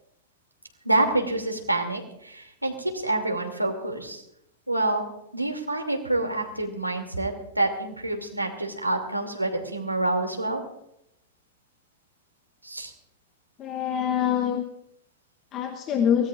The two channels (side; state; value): both; inverted; correlation -0.48